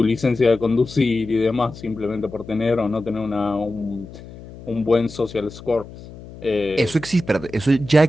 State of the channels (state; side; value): noise; left; hum, 16 dB below the sound